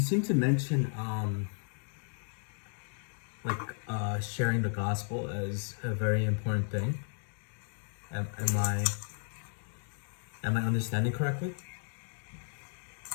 seem to mention sharing the gospel as a very important thing. Am I understanding correctly?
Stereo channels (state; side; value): silent; right; 55 dB below the other